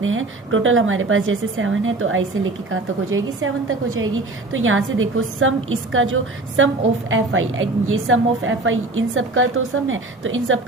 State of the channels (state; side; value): quieter; left; 3.0 dB